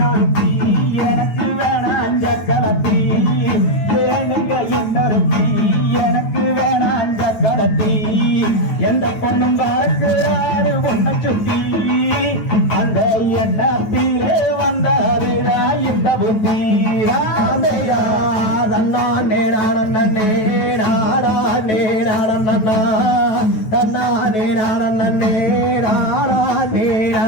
எனக்கு வேணாம் சக்கரத்தி ஏனுங்க இன்னொருத்தி எனக்கு வேணாம் சக்கரத்தி எந்த பொண்ணும் பார்க்கிறாரு உன்னை சுத்தி அந்த எண்ணத்திலே வந்தாருடா இந்த புத்தி ராமையா நன்னா நேரானே நாடா நேரானண்ணா தன்னா நேரானே நாடா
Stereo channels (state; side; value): late; right; 9.3 ms